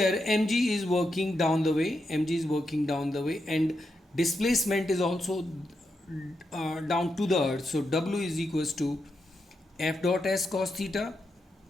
mg is working down the way, and displacement is also down to the earth. So W is equals to F dot S cos theta,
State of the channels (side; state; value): both; normal; correlation 0.85